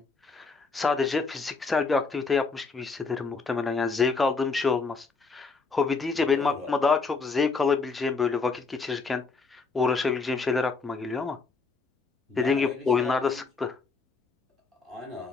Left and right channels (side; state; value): right; quieter; 4.5 dB